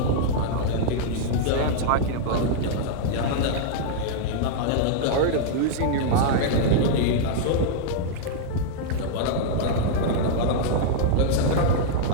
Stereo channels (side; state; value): both; different; correlation -0.01